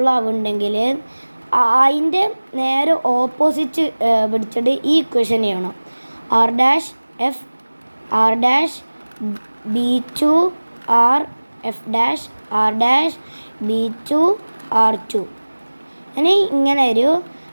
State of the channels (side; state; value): both; inverted; correlation -1.00